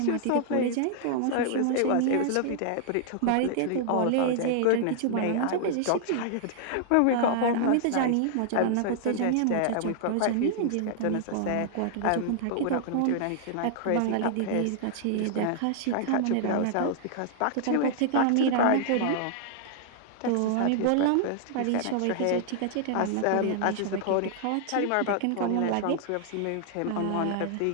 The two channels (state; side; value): different; both; correlation -0.01